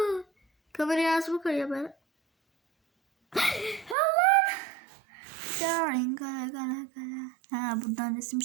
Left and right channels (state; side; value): drops out; left; at 4.0 s